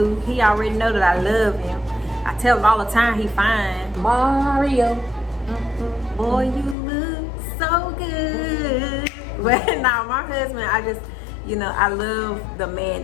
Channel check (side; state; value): right; drops out; at 6.8 s